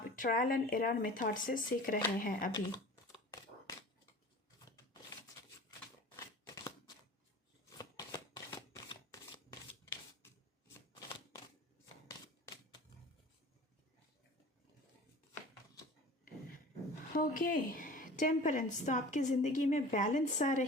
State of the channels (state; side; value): normal; both; correlation 0.40